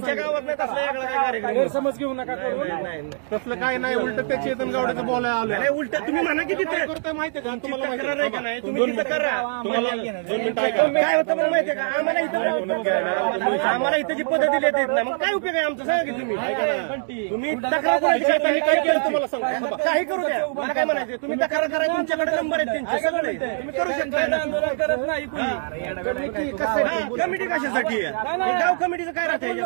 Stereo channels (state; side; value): silent; left; 63 dB below the other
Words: गावात नाही तसला वेगळा काय कार्यक्रम. समज घेऊ नका. नाही तसलं काय नाही. उलट त्या चेतन गावडेचं बोलायला आलं. अरे उलट तुम्ही म्हणा की तिथे माहितीये का तुमची तक्रार आहे का नाही. तुम्ही तिथं करा. काय होतं मग माहितीये का. आम्हाला इथं जी पद्धती देत नाही मग काय उपयोग आहे आमचा. सांगा की तुम्ही तक्रार कोणाची करता. काय केलं तुम्हाला सांगा. काही करू द्या. मला काय म्हणायचं. तुम्ही तक्रार करा. तुमच्याकडे नंबर आहेत त्यांचे सगळे. तुम्ही करू शकता ना. कमिटी कशासाठी आहे. गाव कमिटीचं काय राहतं